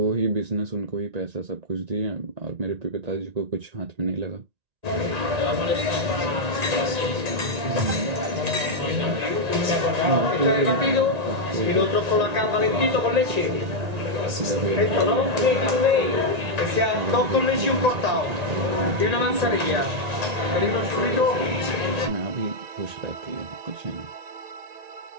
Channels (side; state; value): left; late; 1.9 ms